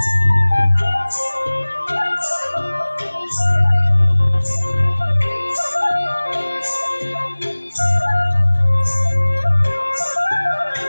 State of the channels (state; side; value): inverted; both; correlation -1.00